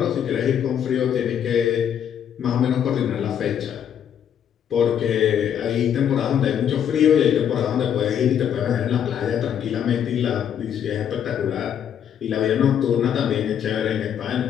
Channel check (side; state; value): right; quieter; 9.0 dB